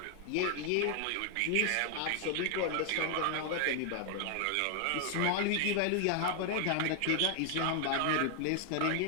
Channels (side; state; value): both; different; correlation 0.00